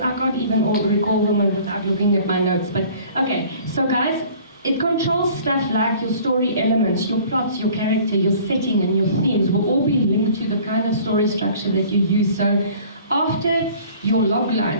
I can't even recall them without looking at my notes. But okay, so guys, it controls stuff like your story elements, your plots, your character, your setting, and your themes will all be linked to the kind of story structure that you use. So after your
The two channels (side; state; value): both; inverted; correlation -0.50